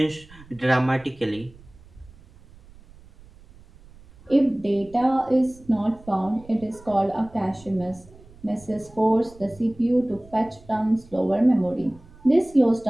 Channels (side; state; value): right; noise; rumble, 24 dB below the sound